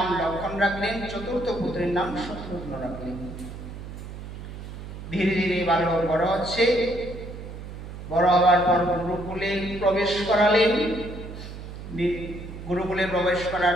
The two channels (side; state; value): right; noise; hum, 11 dB below the sound